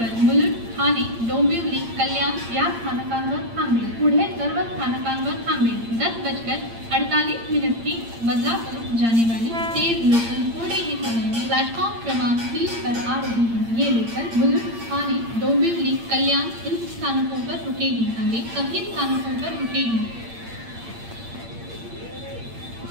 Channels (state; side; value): late; left; 8.7 ms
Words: मुलुंड, ठाणे, डोंबिवली, कल्याण या स्थानकांवर थांबेल। पुढे सर्व स्थानकांवर थांबेल। 10:48 की बदलापुर जाने वाली तेज लोकल थोड़े ही समय में प्लेटफॉर्म क्रमांक 3 पर आ रही है। ये लोकल मुलुंड, ठाणे, डोंबिवली, कल्याण इन स्थानकों पर रुकेगी। आगे सभी स्थानकों पर रुकेगी।